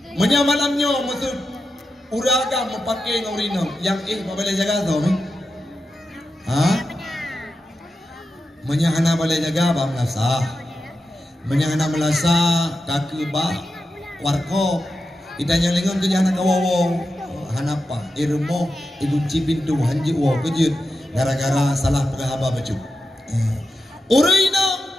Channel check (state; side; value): normal; both; correlation 0.89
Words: Menyamalamnya maksud uraga memakai ngaurinong yang boleh jaga tau ni? Menyahana boleh jaga ba melasa. Menyahana melasa kaki ba warko. Idanya lengan tu jana kawawo hanapa. irmo igunci pintu hanji uwa kejut gara-gara salah pegahaba baju. Urina